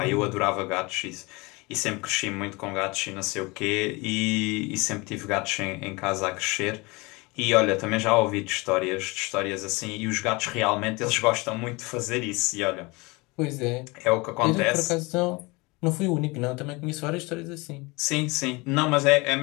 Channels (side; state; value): right; quieter; 25.3 dB